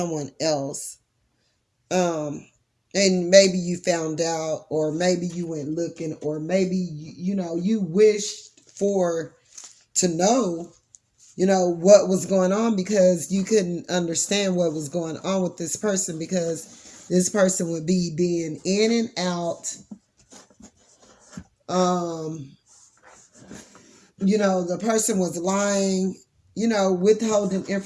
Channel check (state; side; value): identical; both; correlation 1.00